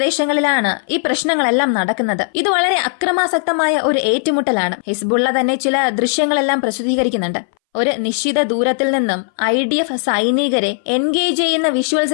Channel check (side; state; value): right; silent; 63 dB below the other